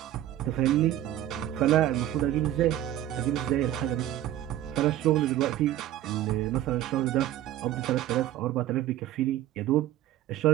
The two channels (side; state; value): left; quieter; 13.0 dB